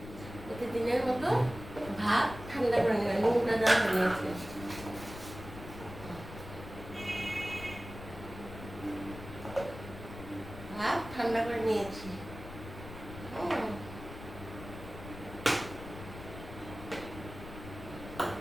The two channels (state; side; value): noise; left; rumble, 12 dB below the sound